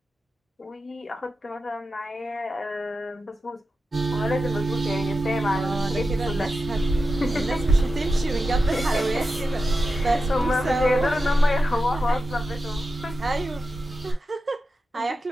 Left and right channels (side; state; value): both; normal; correlation 0.91